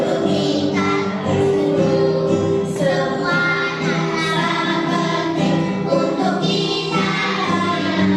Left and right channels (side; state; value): both; identical; correlation 1.00